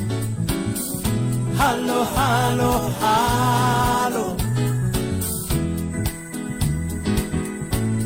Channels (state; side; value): identical; both; correlation 1.00